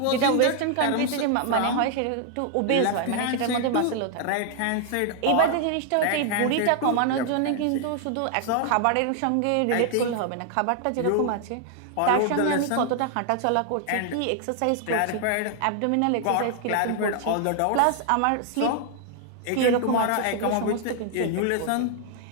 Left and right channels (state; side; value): different; both; correlation 0.00